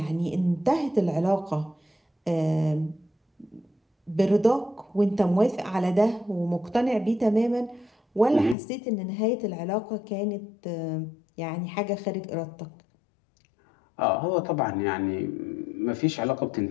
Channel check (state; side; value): drops out; right; at 8.6 s